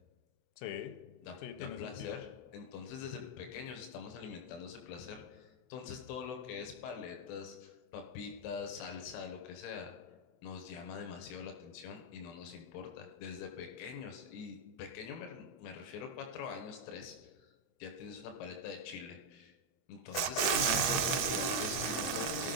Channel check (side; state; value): right; late; 23 ms